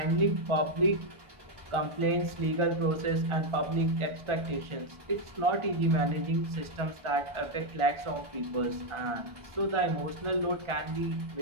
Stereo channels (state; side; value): late; left; 1.4 ms